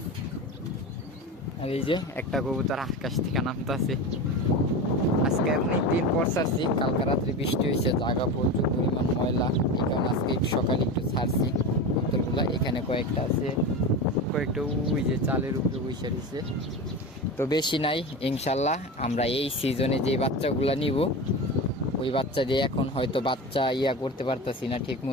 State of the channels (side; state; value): both; normal; correlation 0.25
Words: আর এই যে একটা কবুতর আকাশ থেকে নামতেছে। আজকে অনেক দিন পর ছাড়ছি, কালকে রাত্রে বৃষ্টি হয়েছে, জায়গা প্রচুর পরিমাণ ময়লা, এই কারণে আজকে সকালে একটু ছাড়ছি কবুতরগুলা। এখানে কয়েকটা আছে, কয়েকটা ওই যে চালের উপরে বসে রয়েছে। তো বেশি নাই, ইনশাল্লাহ আমরা এই সিজনে যে বাচ্চাগুলা নিব, ওই বাচ্চা দিয়ে এখন হয়তো বাচ্চা করতে পারতাছি না ঠিক